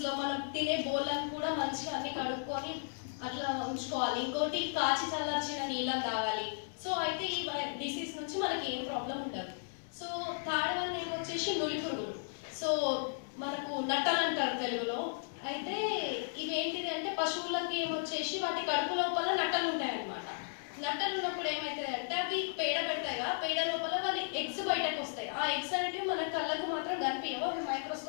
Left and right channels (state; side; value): silent; right; 54 dB below the other